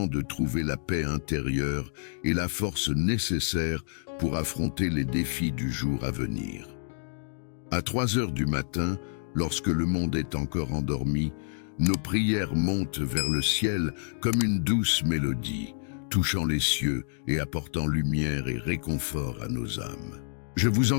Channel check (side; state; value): right; silent; digital silence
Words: de trouver la paix intérieure et la force nécessaire pour affronter les défis du jour à venir. À 3 heures du matin, lorsque le monde est encore endormi, nos prières montent vers le ciel comme une douce mélodie, touchant les cieux et apportant lumière et réconfort à nos âmes. Je vous